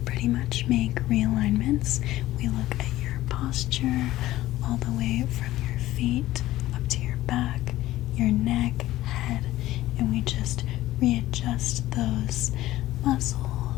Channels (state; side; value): quieter; right; 15.6 dB